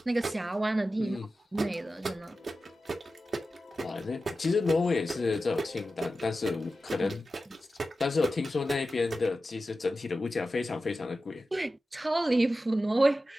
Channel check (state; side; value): normal; both; correlation 0.93